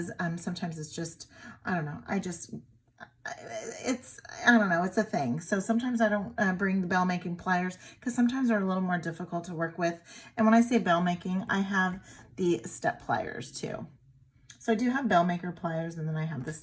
sometimes it's just, I don't know, I don't know, it's a thing. So sometimes I don't bring the bell making pliers because sometimes they're a little more difficult to work with. And when I say bell making, I have the step pliers too. So I do have bell maker pliers, and then I have the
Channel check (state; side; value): identical; both; correlation 1.00